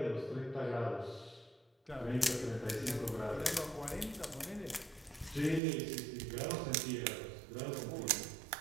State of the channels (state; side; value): drops out; left; at 5.6 s